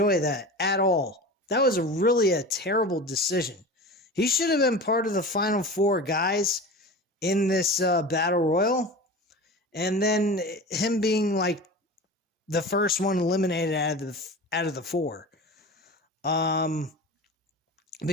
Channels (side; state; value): both; normal; correlation 0.33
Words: that at all. That was really a terrible decision. He should have been part of the final four guys in this battle royal, and then him being like the first one eliminated out of the four.